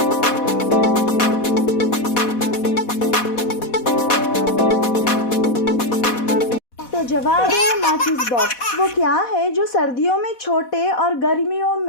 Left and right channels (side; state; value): right; late; 4.1 ms